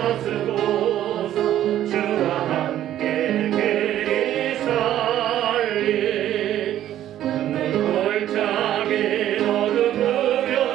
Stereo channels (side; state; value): left; quieter; 12.1 dB